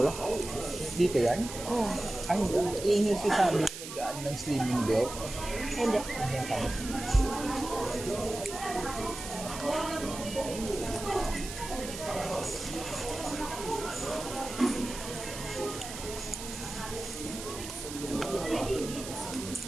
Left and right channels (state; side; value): noise; right; hiss, 10 dB below the sound